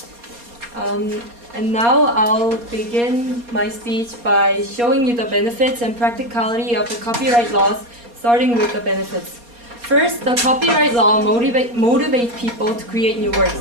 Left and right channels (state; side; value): late; left; 4.2 ms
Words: And now I'll begin my speech by showing you the benefits and practicality of the copyright laws, starting with the benefits. First, the copyright law motivates people to create new works.